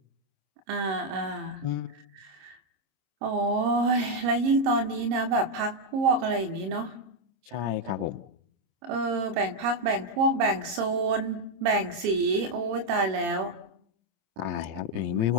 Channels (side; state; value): left; late; 26 ms